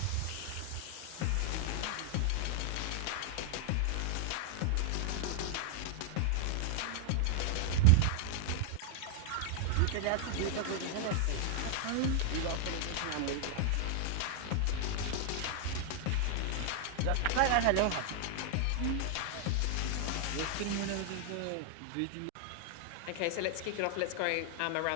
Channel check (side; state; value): both; different; correlation 0.00